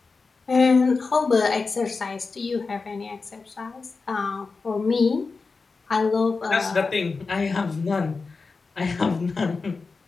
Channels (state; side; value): quieter; right; 4.3 dB